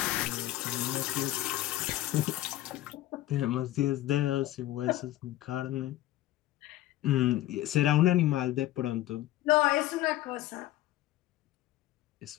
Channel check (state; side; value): quieter; right; 15.1 dB